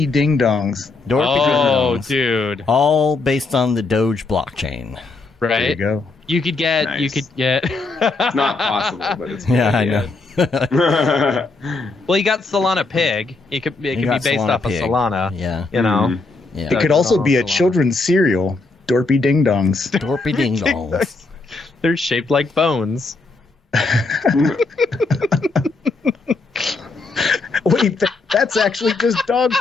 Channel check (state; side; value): quieter; right; 3.6 dB